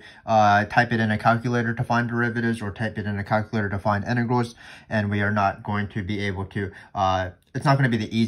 type it in a calculator to find derivatives or type it in a calculator to find integrals. And we are not going to be able to, it's not going to be the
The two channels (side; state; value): both; identical; correlation 1.00